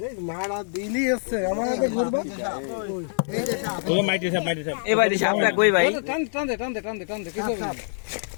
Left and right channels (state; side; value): silent; right; 62 dB below the other